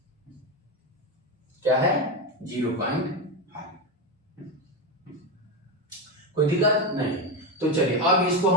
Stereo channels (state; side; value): normal; both; correlation 0.13